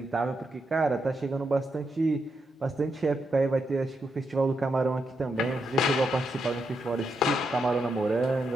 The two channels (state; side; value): normal; both; correlation 0.82